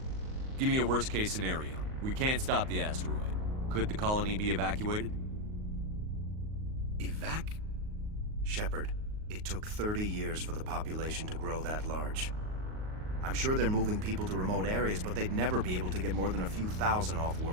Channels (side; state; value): left; late; 38 ms